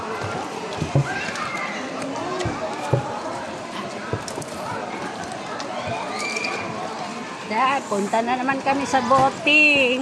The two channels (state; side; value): identical; both; correlation 1.00